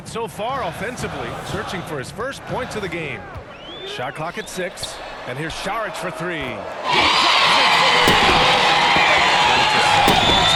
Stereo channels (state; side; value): identical; both; correlation 1.00